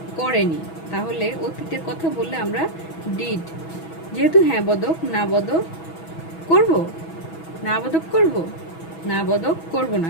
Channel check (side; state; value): right; late; 6.1 ms